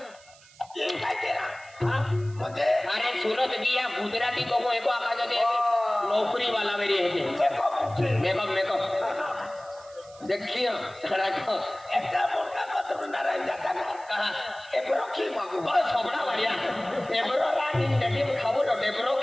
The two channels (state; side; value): noise; right; hiss, 25 dB below the sound